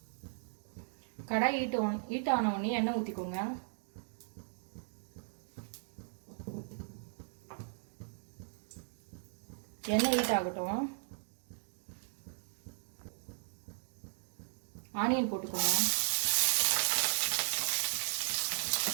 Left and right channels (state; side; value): silent; left; digital silence